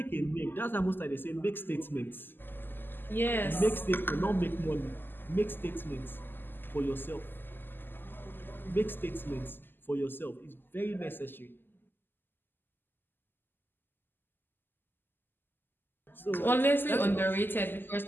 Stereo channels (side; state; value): right; late; 0.094 ms